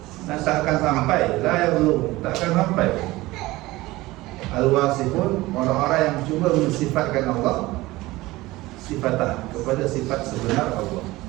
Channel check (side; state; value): left; quieter; 19.2 dB